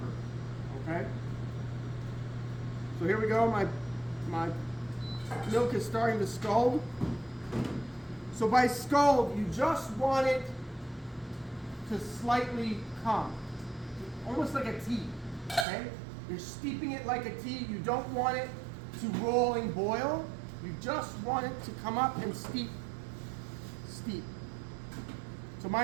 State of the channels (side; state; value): left; drops out; at 15.7 s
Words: Okay? So here we go. My milk is starting to scald. So by scald, you just want it to slightly come. Almost like a tea. Okay? You're steeping it like a tea. You don't want it to roll and boil. You just want it to come up and steep. Steep. So